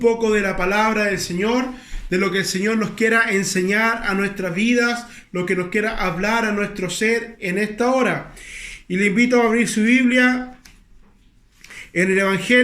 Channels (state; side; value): identical; both; correlation 1.00